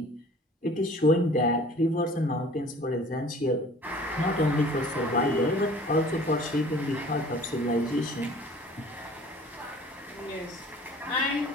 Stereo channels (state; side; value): normal; both; correlation 0.48